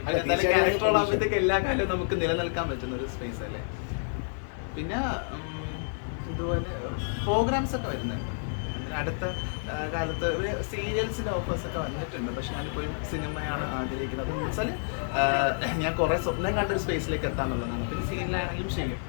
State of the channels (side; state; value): right; silent; digital silence